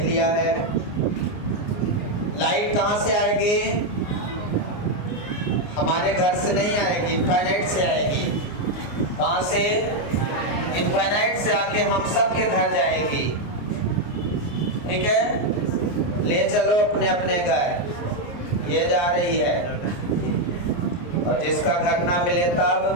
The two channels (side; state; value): right; late; 29 ms